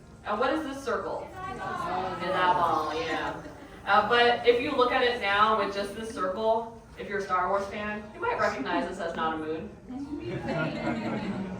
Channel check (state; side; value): identical; both; correlation 1.00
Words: And what is this circle? An eyeball, yeah. But if you look at it now with just this circle, if you're a Star Wars fan, you might recognize this as not a moon.